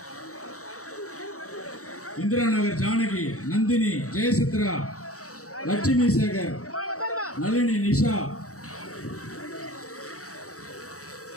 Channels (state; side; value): late; right; 0.65 ms